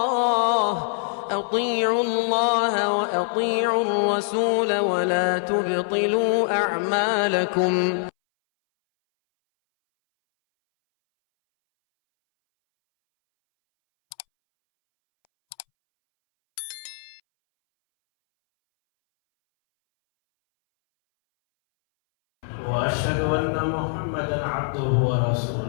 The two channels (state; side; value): silent; right; 62 dB below the other